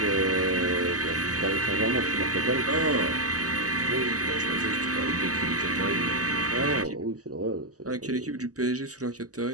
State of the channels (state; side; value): late; left; 0.67 ms